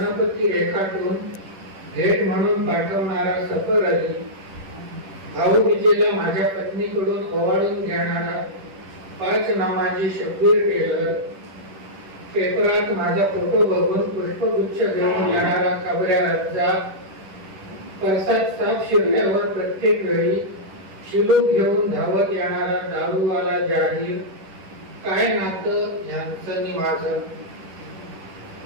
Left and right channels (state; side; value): late; left; 10 ms